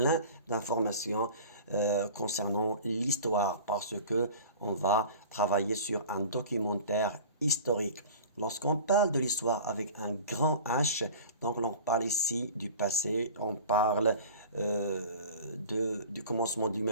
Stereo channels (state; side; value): inverted; both; correlation -0.40